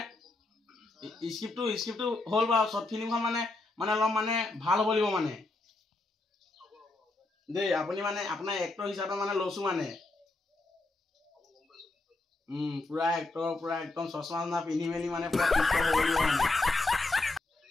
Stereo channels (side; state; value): right; quieter; 3.1 dB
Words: স্ক্ৰিপ্টটো হ'ল বাৰু শৰ্ট ফিল্মখন মানে অলপ মানে ভাল হ'ব লাগিব মানে দেই আপুনি মানে আপোনাৰ এক্টৰ হিচাপে মানে লৈছো মানে পুৰা এক্টৰ পুৰা একদম চশমা পিন্ধি মেলি মানে পুৰা হ'ব লাগিব মানে